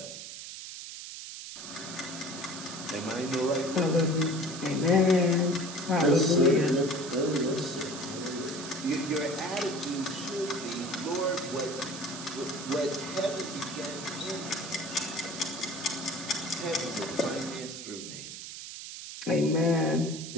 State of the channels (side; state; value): right; noise; hiss, 10 dB below the sound